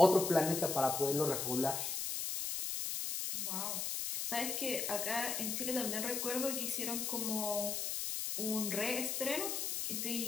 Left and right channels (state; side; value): noise; left; hiss, 2 dB below the sound